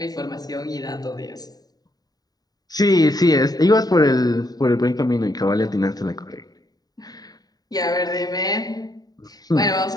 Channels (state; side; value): late; right; 0.18 ms